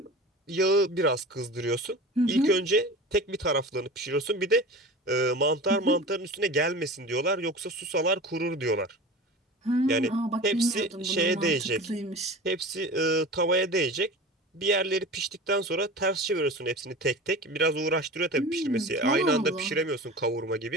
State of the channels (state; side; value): normal; both; correlation 0.34